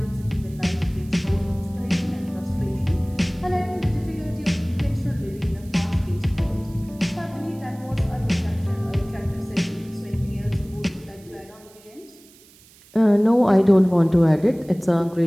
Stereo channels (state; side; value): noise; right; hiss, 26 dB below the sound